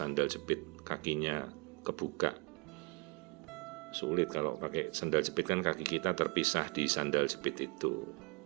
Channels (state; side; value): quieter; left; 29.7 dB